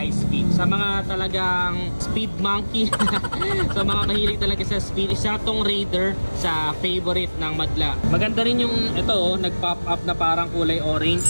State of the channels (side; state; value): both; inverted; correlation -1.00